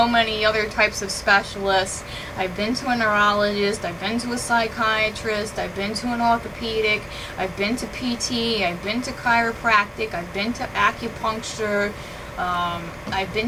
many other types of specialists. I've been to a neurologist, I've been to a psychiatrist, I've been to an orthopedic, I've been to PT, I've been to chiropractic, I've been to acupuncture, I've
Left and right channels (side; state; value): both; identical; correlation 1.00